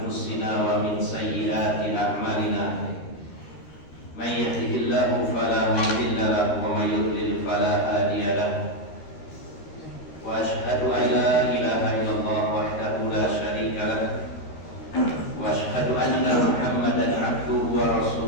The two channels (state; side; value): late; right; 13 ms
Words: wa min sayyiati a'malina. May yahdihillahu fala mudilla lahu wa may yudlil fala hadiya lahu. Wa asyhadu an la ilaha illallah wahdahu la syarika lahu wa asyhadu anna Muhammadan 'abduhu wa